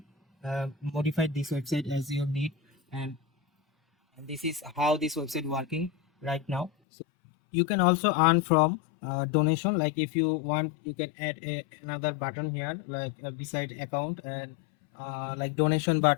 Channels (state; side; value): drops out; right; at 6.7 s